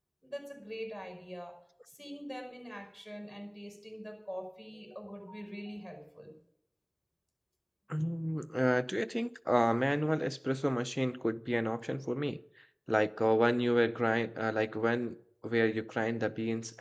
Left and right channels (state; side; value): identical; both; correlation 1.00